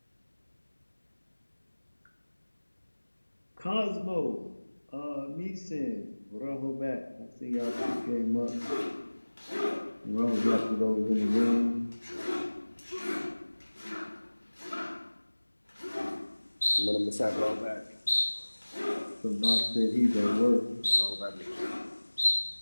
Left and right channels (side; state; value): both; inverted; correlation -1.00